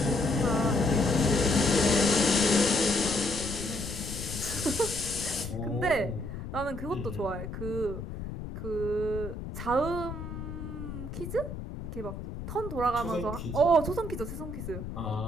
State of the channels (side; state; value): left; noise; rumble, 8 dB below the sound